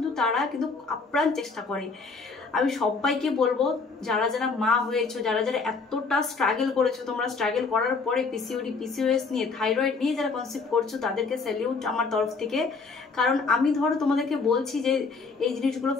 তারা কিন্তু আপ্রাণ চেষ্টা করে। আমি সবাইকে বলবো, যারা যারা মা হয়েছো, যারা যারা এতটা স্ট্রাগল করেছো, তোমরা স্ট্রাগল করার পরে পিসিওডি, পিসিওএস নিয়ে, থাইরয়েড নিয়ে যারা কনসেপ্ট করছো, তাদেরকে স্যালিউট আমার তরফ থেকে। কারণ আমি ধরো তোমাদেরকে বলছি যে এই জিনিসগুলো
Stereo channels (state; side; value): quieter; right; 4.4 dB